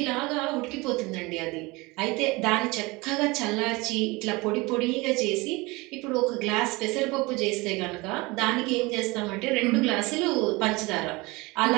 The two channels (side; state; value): left; quieter; 23.8 dB